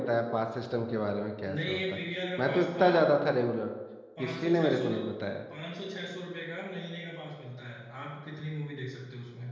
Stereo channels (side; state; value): both; identical; correlation 1.00